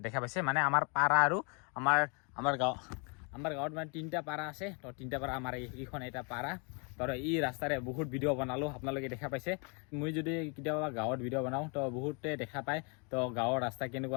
দেখা পাইছে মানে আমাৰ পাৰা আৰু আমাৰ গাঁৱত মানে 3টা পাৰা আছে। তো 3টা পাৰা আমাৰ এইখন এটা পাৰা। তো এই ৰাস্তাৰে বহুত ভিডিঅ' বনালোঁ, আপোনালোকে দেখা পাইছে। মই যদি কেতিয়াবা গাঁৱত ভিডিঅ' বনাওঁ তো বহুতে দেখা পায়। তো গাঁৱৰ ৰাস্তা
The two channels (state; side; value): quieter; right; 35.0 dB